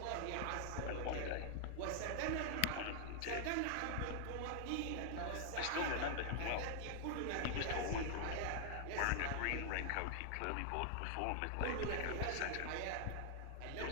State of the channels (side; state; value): both; different; correlation -0.01